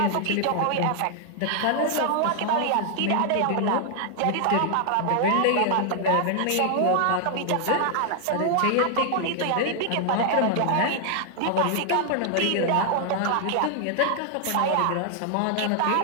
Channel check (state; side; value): different; both; correlation 0.00